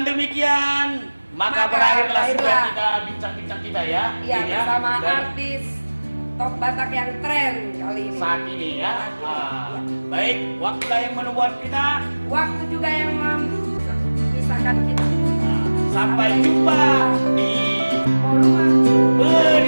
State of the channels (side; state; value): both; inverted; correlation -1.00